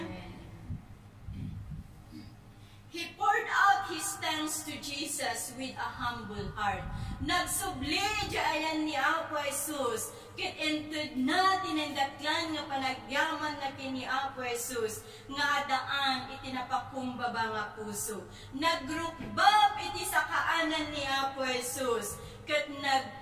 He poured out his thanks to Jesus with a humble heart. Nagsubli ayan ni Apo Jesus, kit entud na tinendaklan nga panagyaman na kini Apo Jesus, nga adaan iti napakumbaba nga puso. Nagrukbab iti sa kaanan ni Apo Jesus, ket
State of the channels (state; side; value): identical; both; correlation 1.00